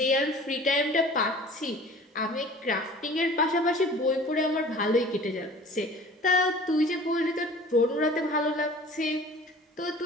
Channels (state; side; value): normal; both; correlation 0.45